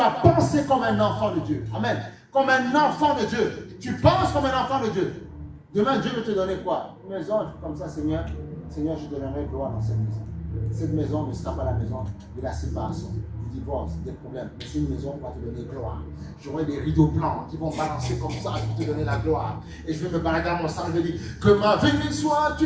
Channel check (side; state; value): both; identical; correlation 1.00